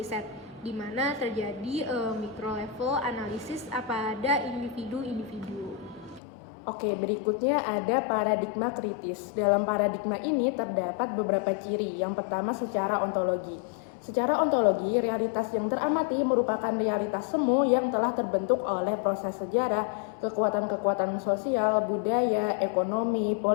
di mana terjadi micro level analisis pada individu-individu. Oke, berikutnya ada paradigma kritis. Dalam paradigma ini terdapat beberapa ciri. Yang pertama secara ontologi. Secara ontologi, realitas yang teramati merupakan realitas semu yang telah terbentuk oleh proses sejarah, kekuatan-kekuatan sosial, budaya, ekonomi,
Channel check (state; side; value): drops out; right; at 6.2 s